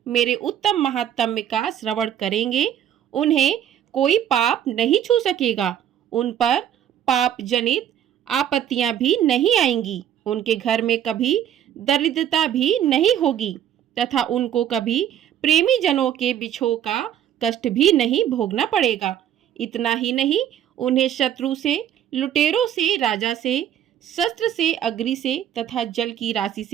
मेरे उत्तम महात्म्य का श्रवण करेंगे, उन्हें कोई पाप नहीं छू सकेगा। उन पर पाप जनित आपत्तियां भी नहीं आएंगी। उनके घर में कभी दरिद्रता भी नहीं होगी तथा उनको कभी प्रेमी जनों के बिछोह का कष्ट भी नहीं भोगना पड़ेगा। इतना ही नहीं, उन्हें शत्रु से, लुटेरों से, राजा से, शस्त्र से, अग्नि से तथा जल की राशि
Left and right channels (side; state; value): left; quieter; 10.3 dB